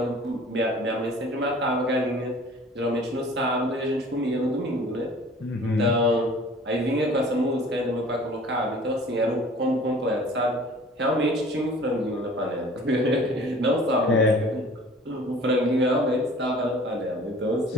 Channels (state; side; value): normal; both; correlation 0.48